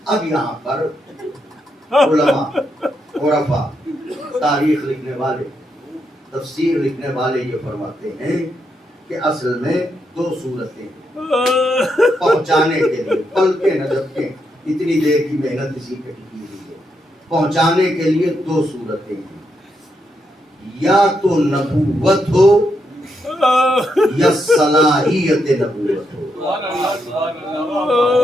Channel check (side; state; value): both; normal; correlation 0.81